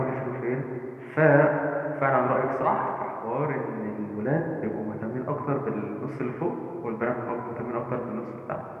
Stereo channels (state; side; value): identical; both; correlation 1.00